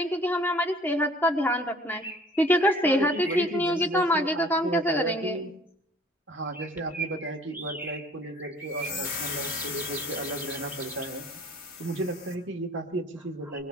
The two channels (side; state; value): both; normal; correlation 0.52